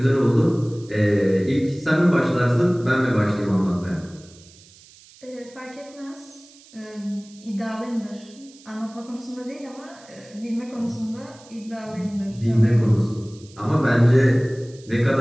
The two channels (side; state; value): right; noise; hiss, 24 dB below the sound